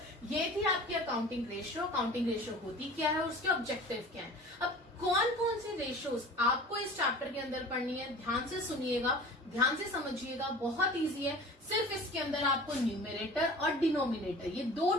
ये थी आपकी अकाउंटिंग रेशियो। अकाउंटिंग रेशियो होती क्या है, उसके ऑब्जेक्टिव क्या है। अब कौन कौन से रेशियोज आपको इस चैप्टर के अंदर पढ़नी है, ध्यान से सुनिएगा, ध्यान से समझिएगा, बहुत इजी है। सिर्फ इसके अंदर आपको न्यूमरेटर और डिनोमिनेटर ये 2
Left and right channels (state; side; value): normal; both; correlation 0.41